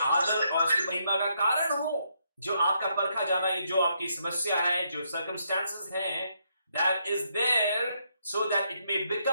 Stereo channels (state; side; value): inverted; both; correlation -0.76